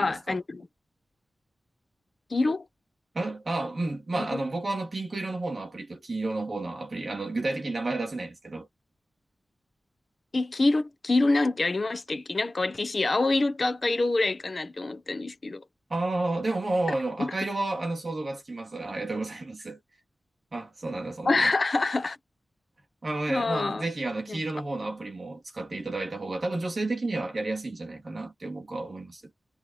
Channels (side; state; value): both; normal; correlation 0.95